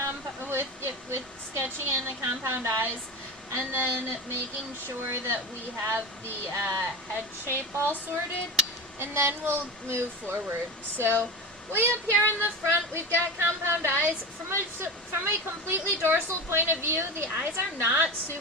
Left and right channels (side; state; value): both; normal; correlation 0.26